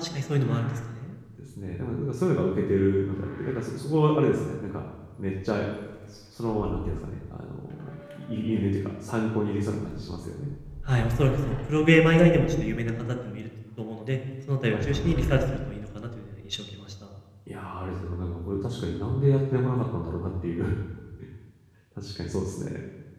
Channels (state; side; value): identical; both; correlation 1.00